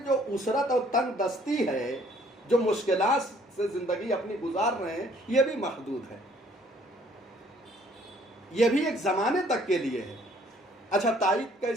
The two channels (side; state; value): both; normal; correlation 0.61